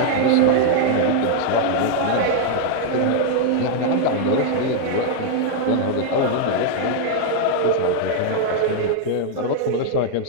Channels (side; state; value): both; different; correlation 0.00